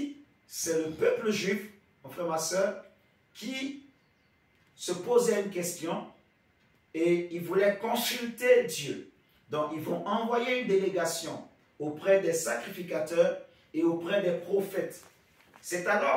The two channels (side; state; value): both; identical; correlation 1.00